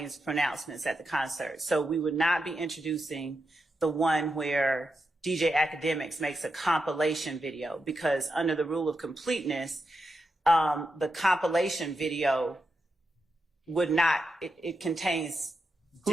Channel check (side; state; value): both; normal; correlation 0.87